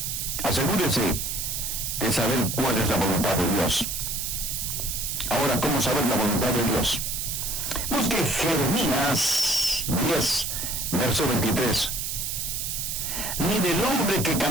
Asegúrese de saber cuál es la voluntad de Dios. Ahora, ¿cómo saber la voluntad de Dios? Busque Jeremías 10, verso 23. Ni del hombre que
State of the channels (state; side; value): noise; right; hiss, 3 dB below the sound